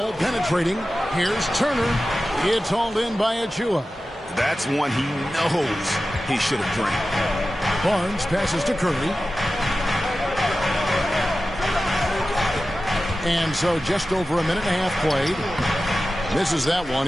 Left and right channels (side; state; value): both; normal; correlation 0.94